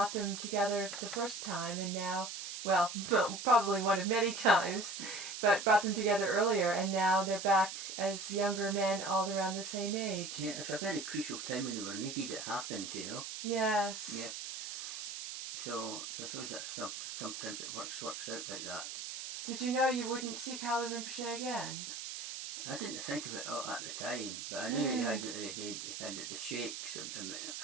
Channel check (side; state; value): right; noise; hiss, 7 dB below the sound